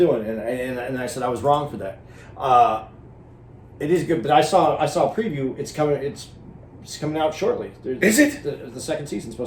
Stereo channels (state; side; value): identical; both; correlation 1.00